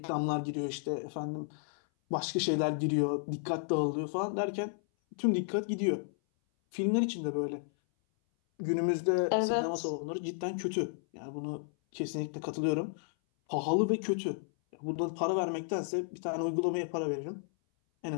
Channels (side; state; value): right; silent; 56 dB below the other